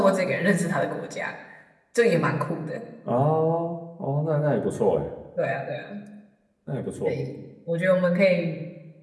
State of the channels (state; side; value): identical; both; correlation 1.00